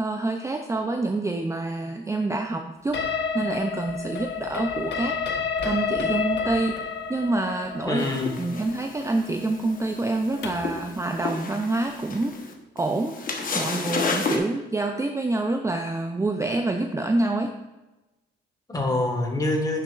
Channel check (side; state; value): both; normal; correlation 0.67